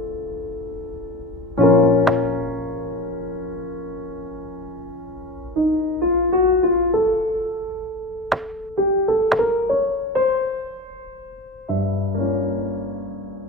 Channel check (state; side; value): normal; both; correlation 0.32